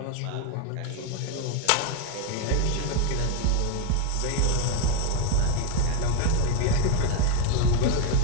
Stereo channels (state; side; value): different; both; correlation 0.01